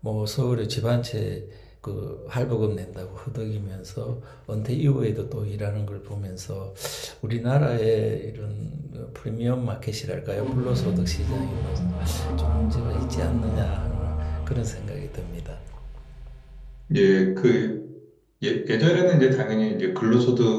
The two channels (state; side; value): identical; both; correlation 1.00